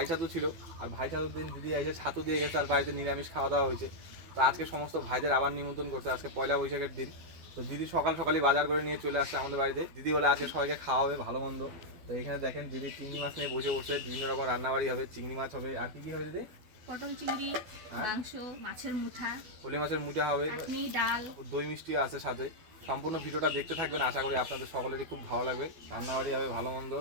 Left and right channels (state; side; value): late; left; 12 ms